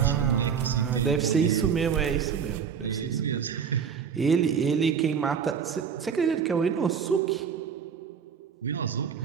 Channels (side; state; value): left; quieter; 7.0 dB